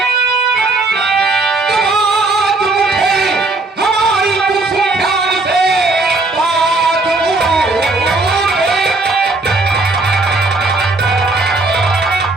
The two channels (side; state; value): left; quieter; 3.3 dB